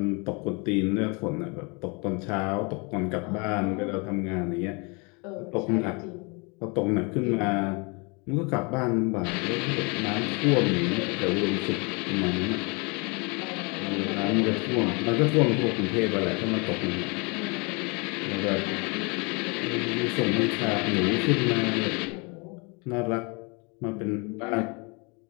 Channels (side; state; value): right; quieter; 31.1 dB